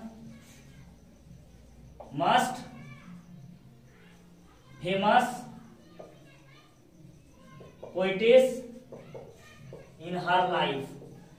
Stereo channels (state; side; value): identical; both; correlation 1.00